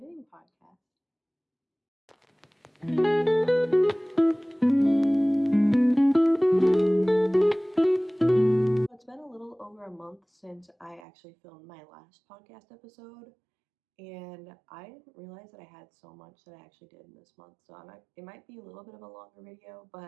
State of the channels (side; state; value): left; drops out; at 11.1 s